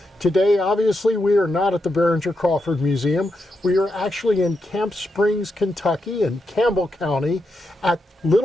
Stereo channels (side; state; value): both; normal; correlation 0.84